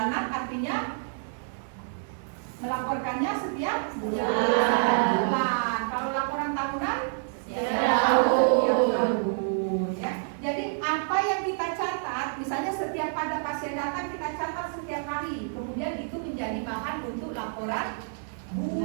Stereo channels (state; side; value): silent; left; digital silence